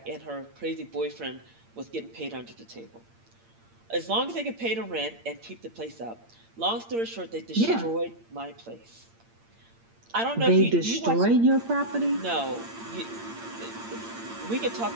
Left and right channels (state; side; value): late; left; 8.7 ms